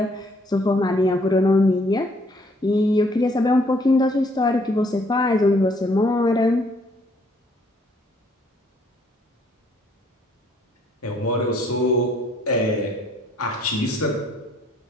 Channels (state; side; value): normal; both; correlation 0.64